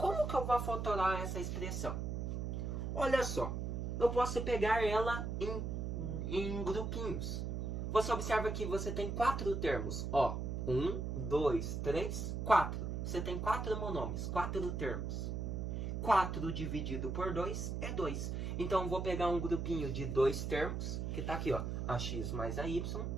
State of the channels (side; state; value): right; noise; hum, 2 dB below the sound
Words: que eu vou fatorar essa expressão? Olha só, eu posso pegar ela em grupinhos. Você observa que você tem 4 termos. Ó, 1, 2, 3, 4. Você tem 4 monômios, 4 termos. 4 dividido por 2 é 2. Então eu vou pegar um grupinho de 2 termos, que está aqui, ó, AX mais AY.